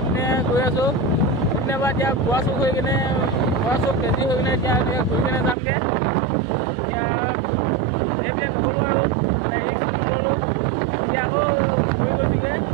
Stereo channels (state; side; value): drops out; left; at 5.6 s